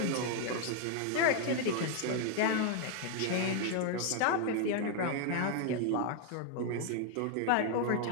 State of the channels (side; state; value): both; different; correlation 0.00